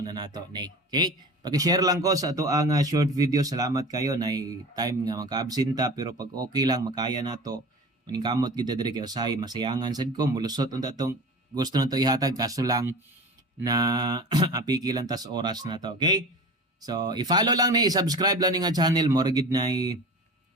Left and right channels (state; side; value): normal; both; correlation 0.35